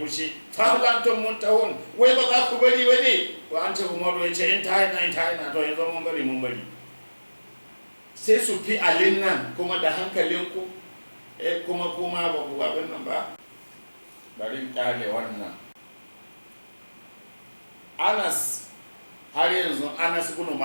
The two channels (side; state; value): both; inverted; correlation -1.00